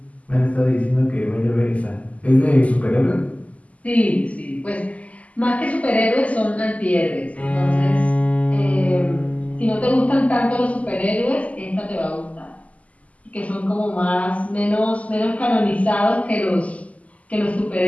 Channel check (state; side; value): late; right; 0.070 ms